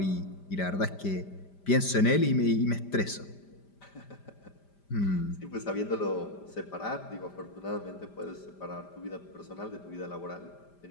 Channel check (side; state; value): right; late; 5.0 ms